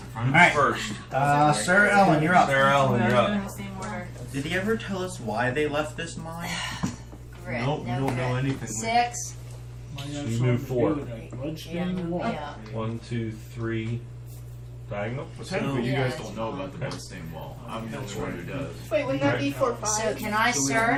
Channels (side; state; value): both; identical; correlation 1.00